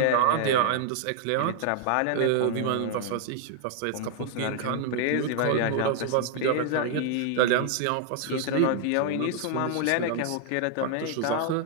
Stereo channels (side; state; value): both; different; correlation 0.00